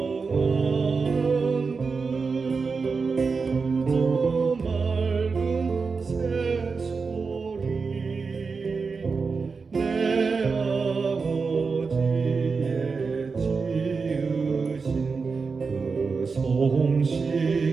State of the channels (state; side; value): quieter; left; 4.8 dB